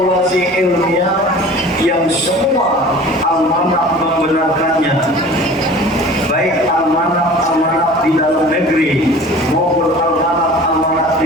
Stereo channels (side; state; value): both; normal; correlation 0.42